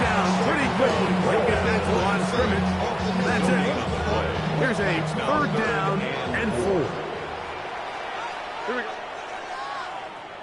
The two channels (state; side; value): identical; both; correlation 1.00